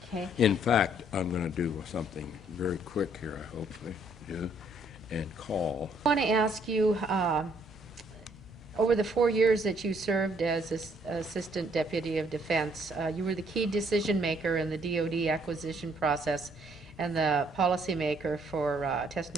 in fact, I'm going to do something very quick here, I hopefully do, and call. I want to ask you, over the 4 years that you served as Assistant Deputy of Defense, you were the key decision maker in the DoD acquisition process and the policymaker for test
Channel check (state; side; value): normal; both; correlation 0.66